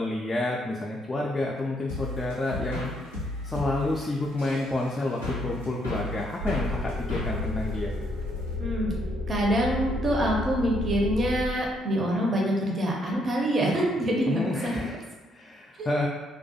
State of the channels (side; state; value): both; normal; correlation 0.72